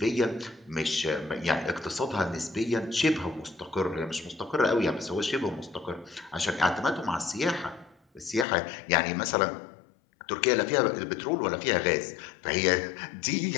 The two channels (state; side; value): drops out; right; at 8.5 s